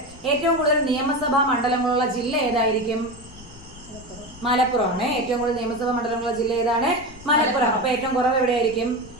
ഏറ്റവും കൂടുതൽ നിയമസഭാ മണ്ഡലങ്ങളുള്ള ജില്ല ഏതായിരിക്കും? മലപ്പുറമാണ്. ഏറ്റവും കൂടുതൽ നിയമസഭാ മണ്ഡലങ്ങളുള്ള ജില്ല ഏതാണ്? മലപ്പുറം. അപ്പൊ ഏറ്റവും കുറവ് എവിടെയായിരിക്കും?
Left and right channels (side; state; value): left; noise; rumble, 19 dB below the sound